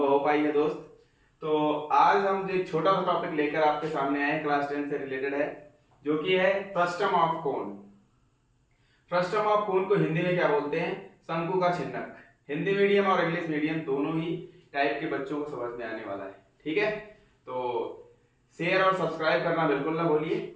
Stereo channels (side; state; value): both; identical; correlation 1.00